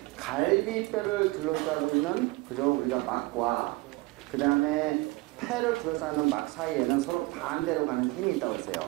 갈비뼈를 둘러싸고 있는 그죠? 우리가 막과 그 다음에 폐를 둘러싸는 막 사이에는 서로 반대로 가는 힘이 있다고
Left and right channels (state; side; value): quieter; left; 22.0 dB